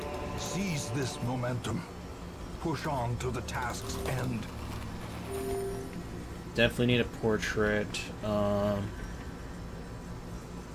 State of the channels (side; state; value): both; identical; correlation 1.00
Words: Seize this momentum. Push on to the task's end. Definitely need a portrait.